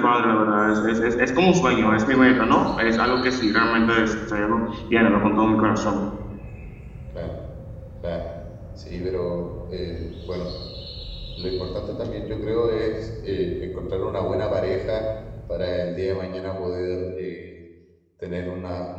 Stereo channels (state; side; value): identical; both; correlation 1.00